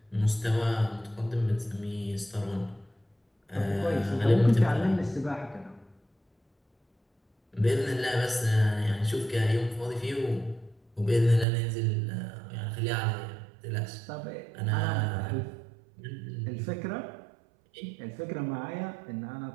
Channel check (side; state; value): left; drops out; at 11.5 s